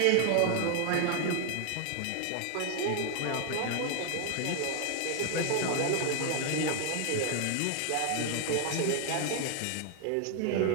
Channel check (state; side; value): different; both; correlation 0.00